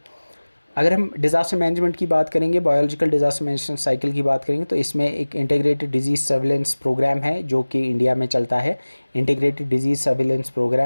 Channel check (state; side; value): inverted; both; correlation -1.00